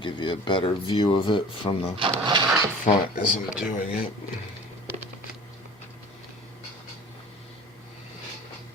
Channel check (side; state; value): both; normal; correlation 0.43